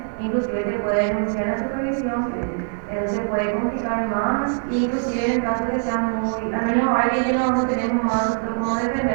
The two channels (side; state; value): left; silent; digital silence